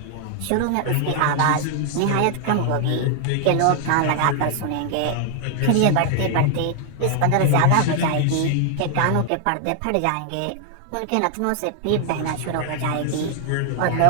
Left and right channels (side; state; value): both; different; correlation 0.00